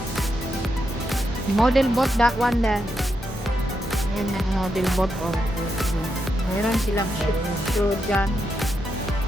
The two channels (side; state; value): both; normal; correlation 0.83